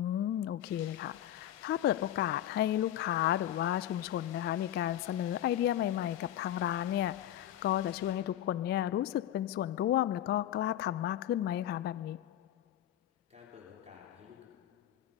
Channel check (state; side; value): quieter; right; 12.0 dB